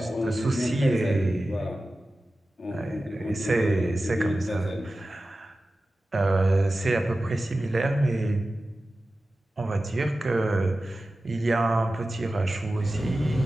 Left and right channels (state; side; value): normal; both; correlation 0.95